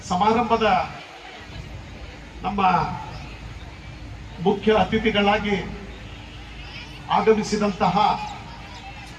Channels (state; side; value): identical; both; correlation 1.00